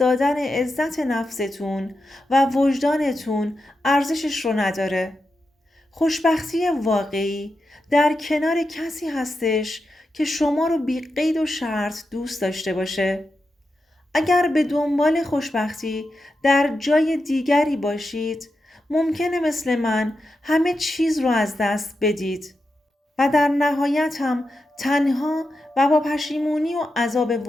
عزت نفستون و وجدانتون ارزشش رو نداره. خوشبختی واقعی در کنار کسی هستش که شما رو بی قید و شرط دوست داشته باشه. اگر به دنبال خوشبختی در جای دیگری باشید، ممکنه مثل من همه چیز رو از دست بدید. و در نهایت هم تنها و با پشیمونی و عذاب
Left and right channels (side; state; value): both; normal; correlation 0.88